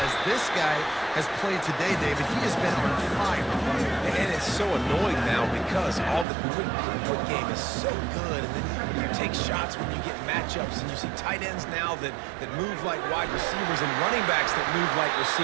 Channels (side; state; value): left; drops out; at 6.2 s